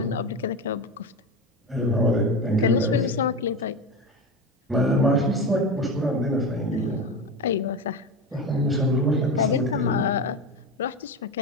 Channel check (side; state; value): both; normal; correlation 0.22